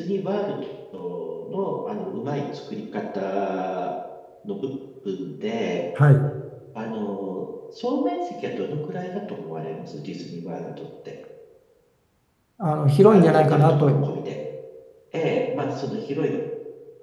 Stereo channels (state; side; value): identical; both; correlation 1.00